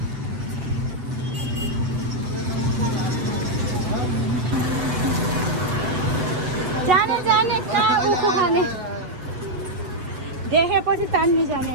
जाने जाने कहाँ उखु खाने देखेपछि तान्नु जाने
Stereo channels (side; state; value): left; late; 7.8 ms